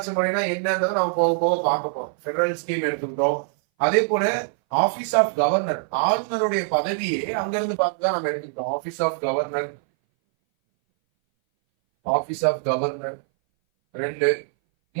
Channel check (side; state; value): left; silent; 60 dB below the other